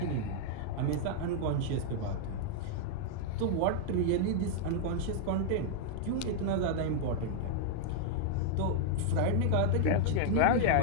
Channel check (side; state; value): both; different; correlation -0.01